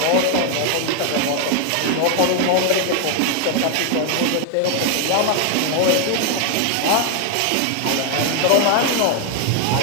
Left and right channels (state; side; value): different; both; correlation 0.00